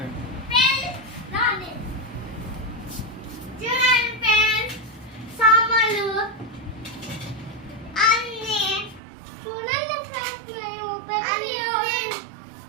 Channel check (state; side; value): drops out; left; at 9.0 s